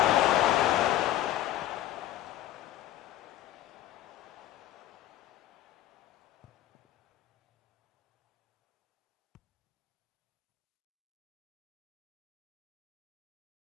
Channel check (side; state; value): right; quieter; 13.8 dB